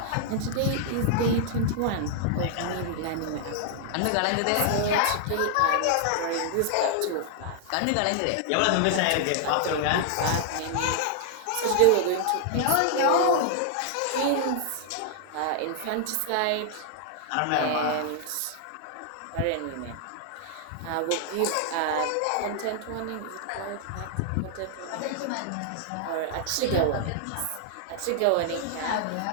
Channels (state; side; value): different; both; correlation -0.01